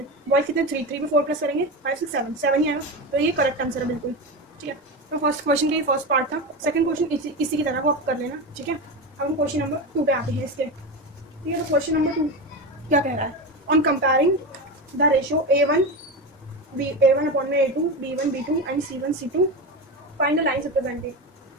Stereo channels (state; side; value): normal; both; correlation 0.19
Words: बॉयज़ कितने 3 3 में 4 प्लस करेंगे 5 6 7 7 ही आएगा। तो ये करेक्ट आंसर है बिल्कुल, ठीक है। तो फर्स्ट क्वेश्चन का ये फर्स्ट पार्ट था। सेकंड क्वेश्चन इसी की तरह को आप कर लेना, ठीक है। अब हम क्वेश्चन नंबर 2 पे आते हैं इसके, ठीक है। तो क्वेश्चन नंबर 2 क्या कह रहा है? On comparing the ratio A1 upon में A2 B1 B2 and C1 C2 find the lines representing.